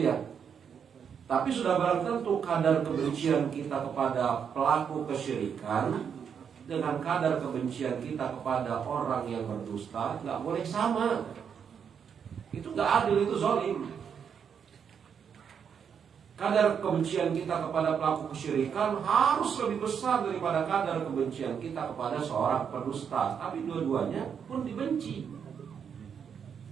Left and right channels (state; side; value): quieter; left; 7.3 dB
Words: ya. Tapi sudah barang tentu kadar kebencian kita kepada pelaku kesyirikan dengan kadar kebencian kita kepada orang yang berdusta nggak boleh sama. Itu nggak adil, itu zalim. Kadar kebencian kita kepada pelaku kesyirikan harus lebih besar daripada kadar kebencian kita kepada seorang pendusta. Tapi dua-duanya pun dibenci.